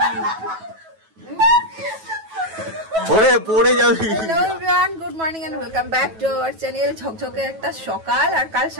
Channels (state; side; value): late; left; 9.2 ms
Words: ওরে পড়ে যাবি। Hello everyone, good morning and welcome back to our channel. ঝকঝকে একটা সকাল, আর কাল